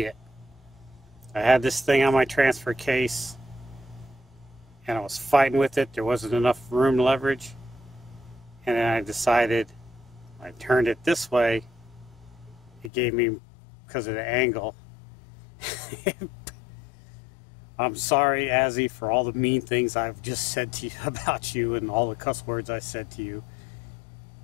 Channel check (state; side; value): drops out; right; at 12.9 s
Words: I had this thing on my transfer case and I was fighting with it. There wasn't enough room leverage. And then I decided I turned it this way. It gave me, because of the angle. I'm sorry, Azzy, for all the mean things I've just said to you about you and all the cuss words I said to you.